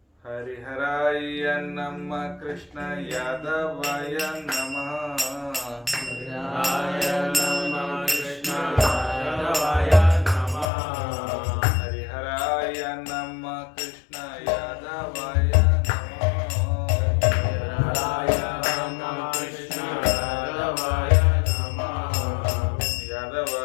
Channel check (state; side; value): drops out; right; at 10.7 s